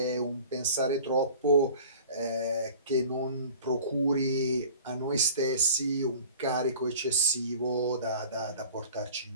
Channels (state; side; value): inverted; both; correlation -0.44